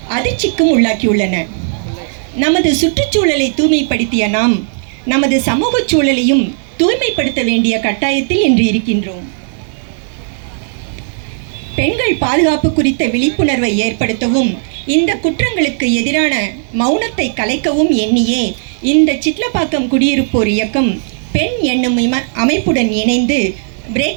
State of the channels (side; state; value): left; silent; digital silence